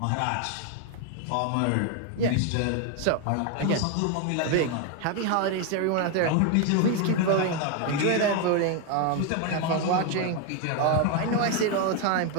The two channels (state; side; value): different; both; correlation 0.01